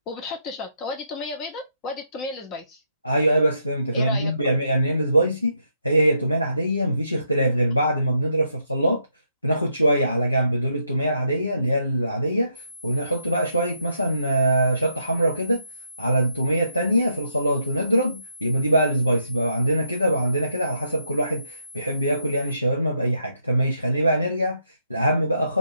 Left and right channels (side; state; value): both; inverted; correlation -0.78